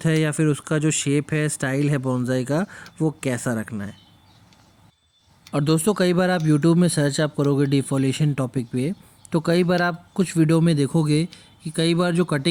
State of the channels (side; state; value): both; identical; correlation 1.00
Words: है या फिर उसका जो शेप है, स्टाइल है बोनसाई का, वो कैसा रखना है। और दोस्तों कई बार आप YouTube में सर्च आप करोगे डिफोलिएशन टॉपिक पे, तो कई बार आप कुछ वीडियो में देखोगे कि कई बार जो